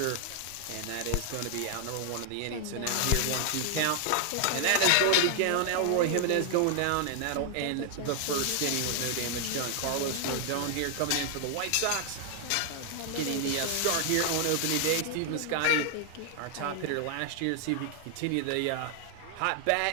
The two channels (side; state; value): both; different; correlation 0.00